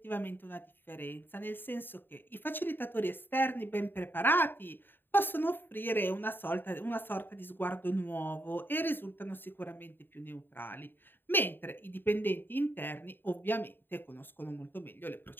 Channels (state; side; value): late; right; 0.096 ms